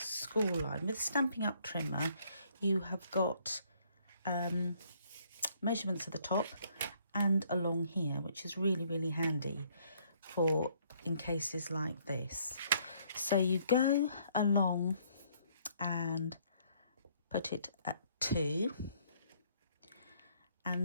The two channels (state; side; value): inverted; both; correlation -0.66